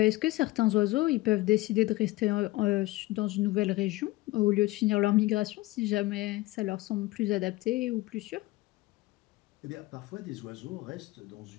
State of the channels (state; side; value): quieter; right; 19.6 dB